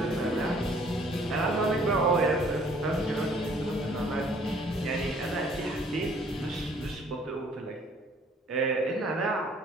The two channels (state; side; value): normal; both; correlation 0.58